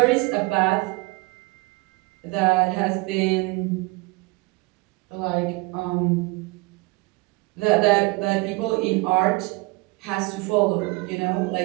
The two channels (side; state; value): left; quieter; 24.6 dB